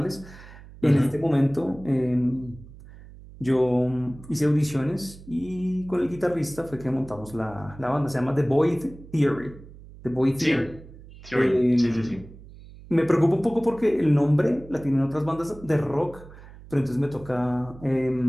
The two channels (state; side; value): noise; right; hum, 19 dB below the sound